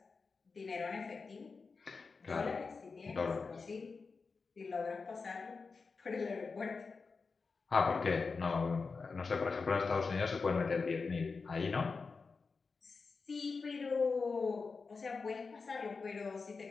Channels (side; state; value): right; quieter; 4.6 dB